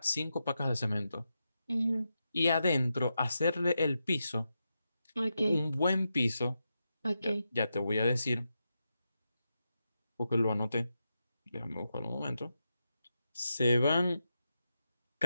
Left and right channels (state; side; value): inverted; both; correlation -0.88